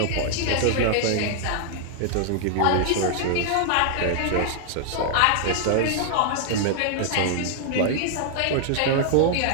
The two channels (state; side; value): different; both; correlation 0.00